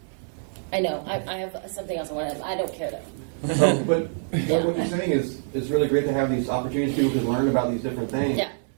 I know. I have something else I want to. I don't care though. But what you're saying is it's really great to have these opportunities. People can learn about these different things. Yeah.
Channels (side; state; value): left; silent; digital silence